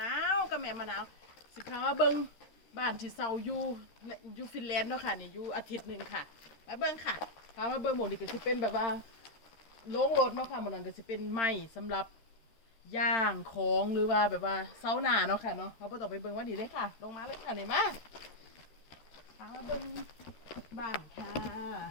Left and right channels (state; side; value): late; right; 13 ms